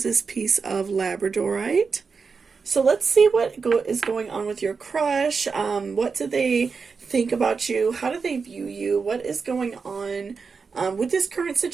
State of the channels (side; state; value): left; quieter; 5.1 dB